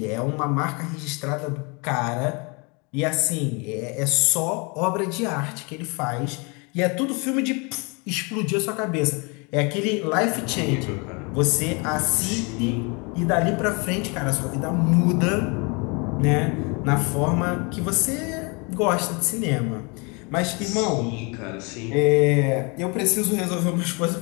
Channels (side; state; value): right; quieter; 30.9 dB